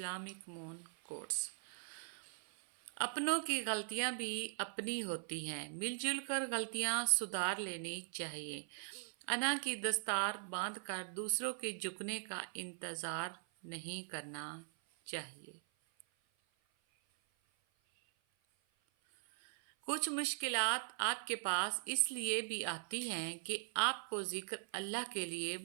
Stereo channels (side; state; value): left; silent; 51 dB below the other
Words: moon quotes. اپنوں کی غلطیاں بھی اپنی ہوتی ہیں، مل جل کر غلطیاں سدھار لینی چاہیے۔ انا کی دستار باندھ کر دوسروں کے جھکنے کا انتظار نہیں کرنا چاہیے۔ کچھ مشکلات آپ کے پاس اس لیے بھی آتی ہیں کہ آپ کو ذکر اللہ کے لیے